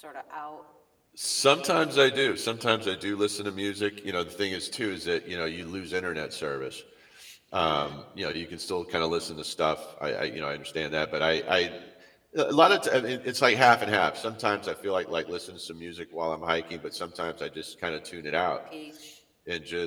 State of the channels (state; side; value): identical; both; correlation 1.00